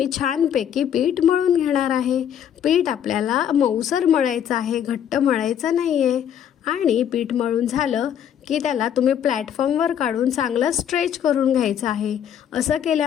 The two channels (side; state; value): right; quieter; 9.3 dB